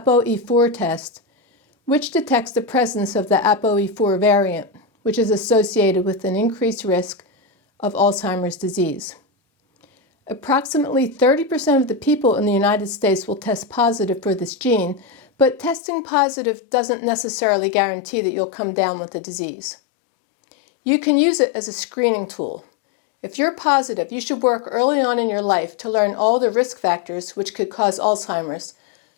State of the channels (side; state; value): right; drops out; at 15.8 s